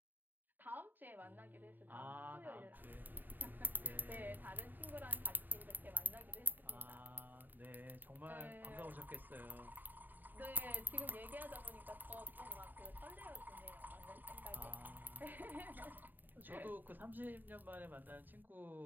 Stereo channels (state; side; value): late; left; 0.089 ms